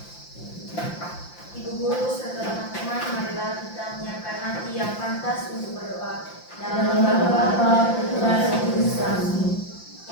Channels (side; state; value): right; late; 5.8 ms